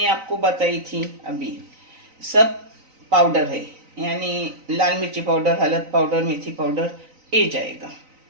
आपको बताई थी अभी, सब पाउडर है, यानी लाल मिर्ची पाउडर, हल्द पाउडर, मेथी पाउडर, ये जाएगा।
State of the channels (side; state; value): left; late; 3.9 ms